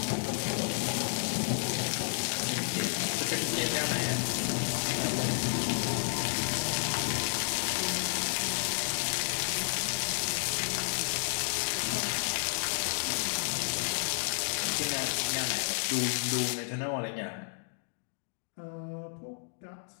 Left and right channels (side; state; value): right; silent; digital silence